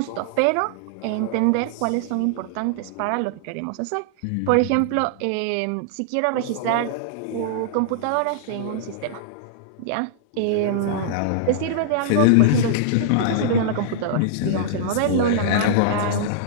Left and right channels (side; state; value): both; different; correlation -0.01